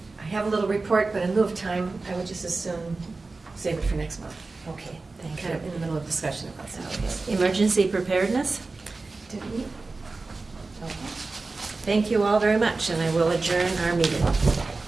have a little report, but in lieu of time, I would just as soon save it for next month. Okay, thank Kind of in you. the middle of discussion about something. Emergency preparedness. Did we? Thank you all very much, and I will adjourn our meeting.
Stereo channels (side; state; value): left; quieter; 3.7 dB